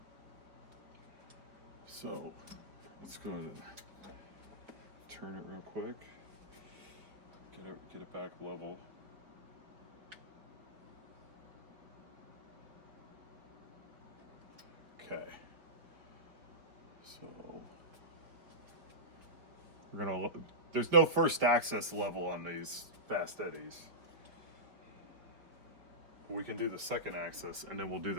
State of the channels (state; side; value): late; left; 4.7 ms